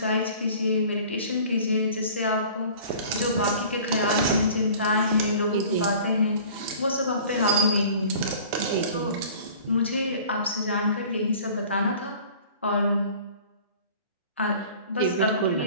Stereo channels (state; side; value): inverted; both; correlation -0.46